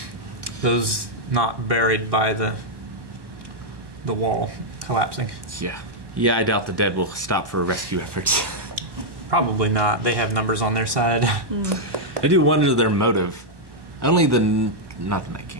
Those not buried by the wall collapsing. Yeah. Yeah, I doubt the Dead will stop for rescue efforts. Probably not. They have numbers on their side. I do wonder their motive. Only not the Night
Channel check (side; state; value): left; late; 1.1 ms